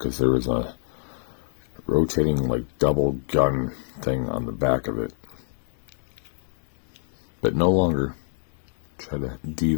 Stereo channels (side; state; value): right; silent; 61 dB below the other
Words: there was a rotating like double gun thing on the back of it. But no longer. Try to